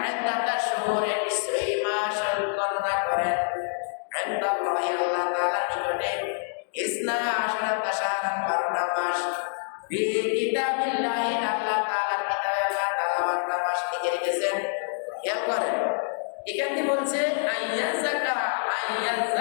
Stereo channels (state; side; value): silent; right; digital silence